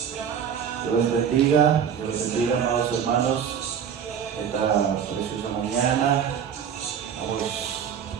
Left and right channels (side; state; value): left; quieter; 8.1 dB